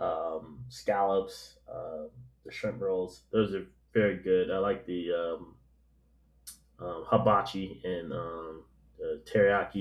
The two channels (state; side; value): identical; both; correlation 1.00